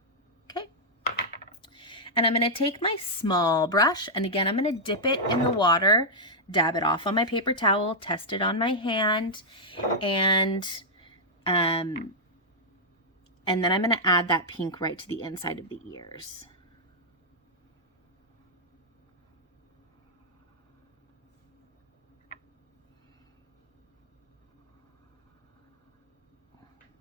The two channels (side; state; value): both; normal; correlation -0.06